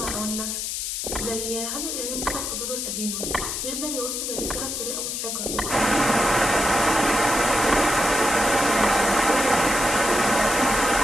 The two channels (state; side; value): noise; left; hiss, 3 dB below the sound